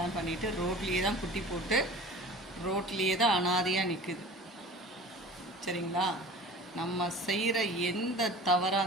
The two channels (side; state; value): both; normal; correlation 0.41